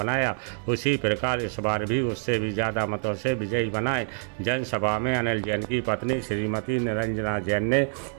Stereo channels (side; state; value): left; silent; 61 dB below the other